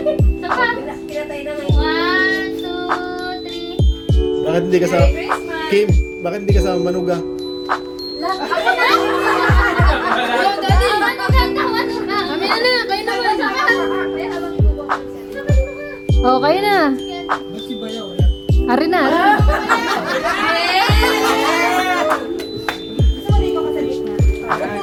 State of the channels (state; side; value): identical; both; correlation 1.00